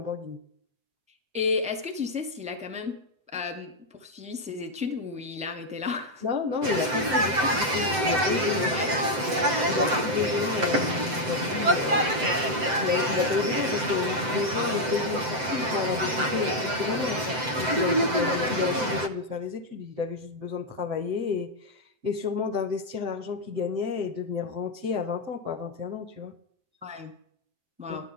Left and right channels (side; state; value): left; late; 7.8 ms